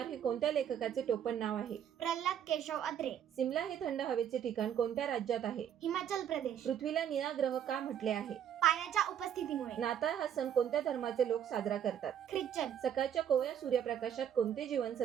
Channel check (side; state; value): left; quieter; 9.3 dB